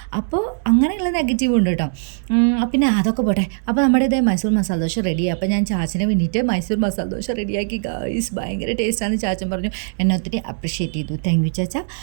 അപ്പോൾ അങ്ങനെയുള്ള നെഗറ്റീവ് ഉണ്ട് കേട്ടോ. പിന്നെ അതൊക്കെ പോട്ടെ. അപ്പോൾ നമ്മുടെ ഇതേ മൈസൂർ മസാല ദോശ റെഡിയായി. അപ്പോൾ ഞാൻ ചാച്ചന് വേണ്ടിയിട്ട് മൈസൂർ മസാല ദോശ റെഡിയാക്കി. ഗൈസ്, ഭയങ്കര ടേസ്റ്റാണെന്ന് ചാച്ചൻ പറഞ്ഞു. എന്നെ ഒത്തിരി അപ്രിഷ്യേറ്റ് ചെയ്തു. താങ്ക് യു ചാച്ച.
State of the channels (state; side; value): silent; left; digital silence